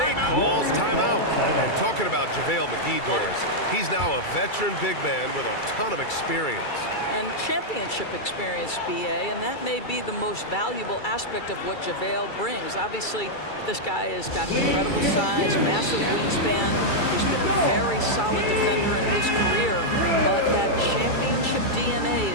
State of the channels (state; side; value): late; right; 2.3 ms